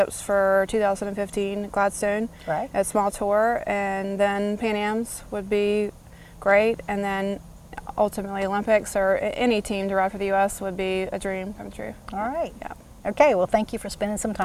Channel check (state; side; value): identical; both; correlation 1.00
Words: for 2015 Gladstone Right. at small tour, and then Pan Am's would be great, and then ultimately Olympics or any team to ride for the U.S. would be a dream come true. All right. Yeah. Okay, well, thank you for spending some